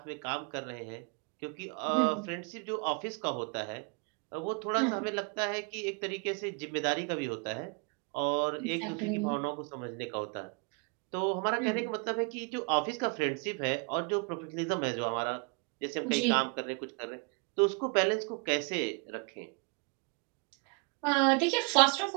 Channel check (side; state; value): left; quieter; 33.8 dB